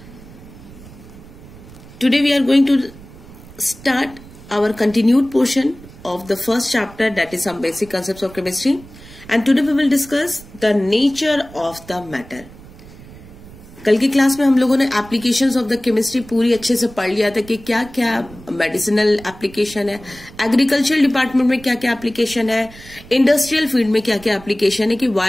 Today we are going to start our continued portion of the first chapter, that is some basic concepts of chemistry, and today we will discuss the nature of the matter. कल की क्लास में हम लोगों ने एप्लीकेशंस ऑफ द केमिस्ट्री पूरी अच्छे से पढ़ लिया था कि क्या क्या मेडिसिनल एप्लीकेशन है, एग्रीकल्चरल डिपार्टमेंट में क्या क्या एप्लीकेशन है, इंडस्ट्रियल फील्ड में क्या क्या एप्लीकेशन है, कि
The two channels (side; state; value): right; noise; rumble, 19 dB below the sound